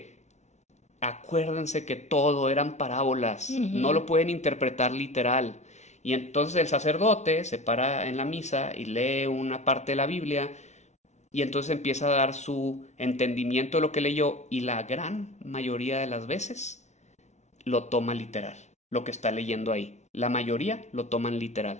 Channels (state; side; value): late; right; 0.33 ms